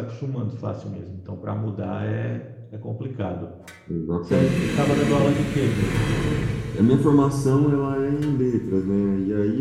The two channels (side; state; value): both; identical; correlation 1.00